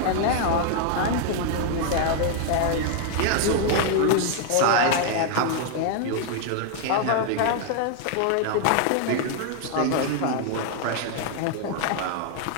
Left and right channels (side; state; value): both; different; correlation 0.00